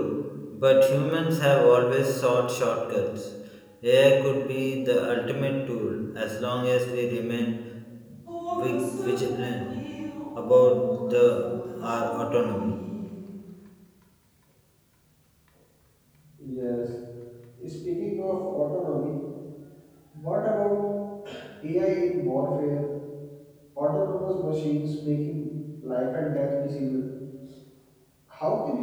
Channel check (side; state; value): both; identical; correlation 1.00